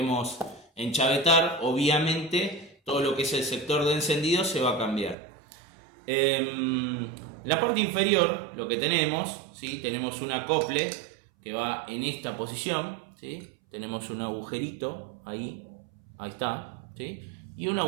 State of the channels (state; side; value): drops out; left; at 5.2 s